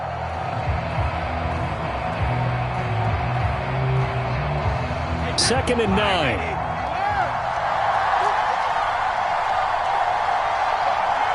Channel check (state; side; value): identical; both; correlation 1.00